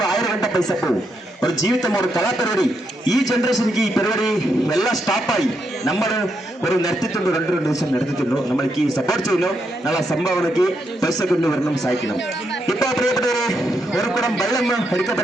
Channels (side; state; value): both; normal; correlation 0.80